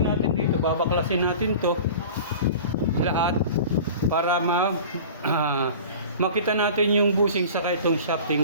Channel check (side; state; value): both; inverted; correlation -0.39